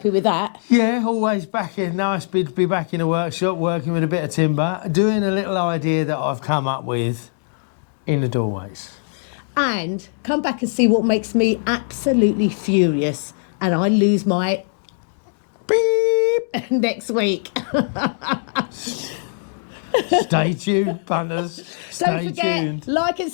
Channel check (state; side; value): silent; right; digital silence